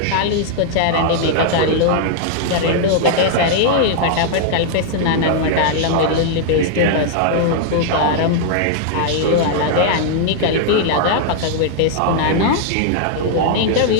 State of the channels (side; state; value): both; different; correlation -0.01